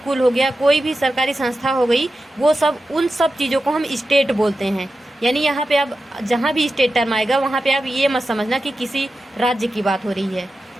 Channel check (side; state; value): both; normal; correlation 0.92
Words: हो गया, कोई भी सरकारी संस्था हो गई, वो सब उन सब चीज़ों को हम स्टेट बोलते हैं। यानी यहाँ पे अब जहाँ भी स्टेट टर्म आएगा वहाँ पे आप ये मत समझना कि किसी राज्य की बात हो रही है,